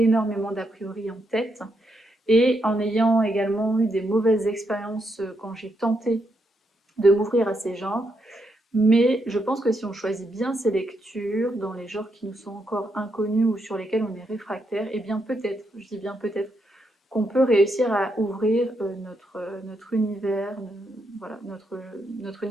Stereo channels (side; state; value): both; normal; correlation 0.80